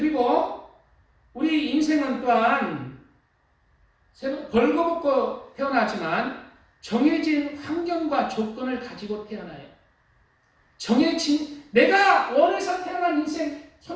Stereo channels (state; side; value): identical; both; correlation 1.00